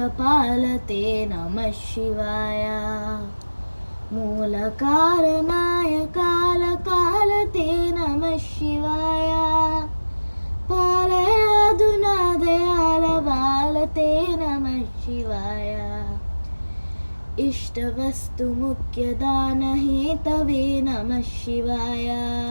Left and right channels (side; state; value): both; inverted; correlation -1.00